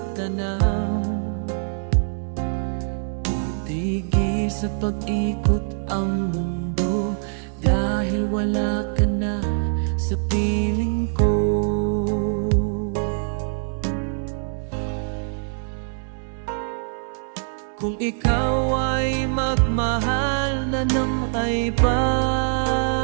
Tigil sa pag-ikot ang mundo, dahil wala ka na sa piling ko. Kung ikaw ay magmahal na ng iba,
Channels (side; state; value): left; silent; digital silence